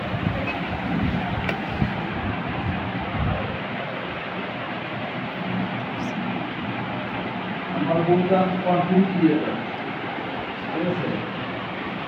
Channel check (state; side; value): identical; both; correlation 1.00